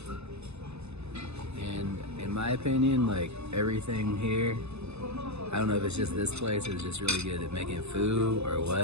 And in my opinion, like everything here, I don't know if it's just this place or it's just really good at making food or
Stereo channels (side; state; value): left; late; 0.80 ms